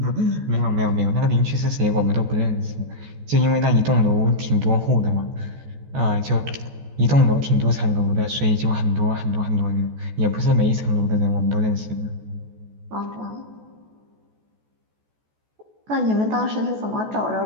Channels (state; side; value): late; left; 14 ms